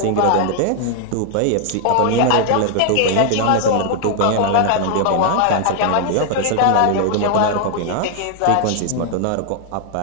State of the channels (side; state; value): both; different; correlation 0.00